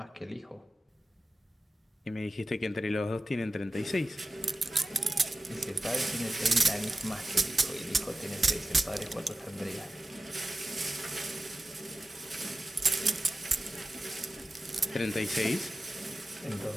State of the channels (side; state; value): both; normal; correlation 0.95